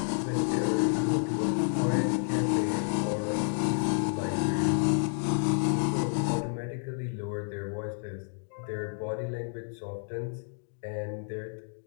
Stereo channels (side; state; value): right; silent; digital silence